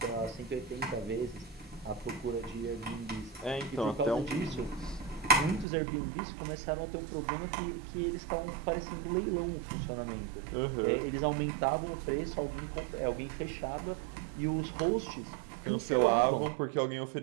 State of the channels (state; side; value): drops out; left; at 5.7 s